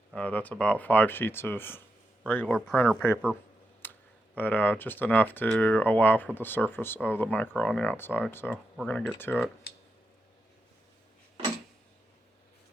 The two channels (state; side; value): normal; both; correlation 0.86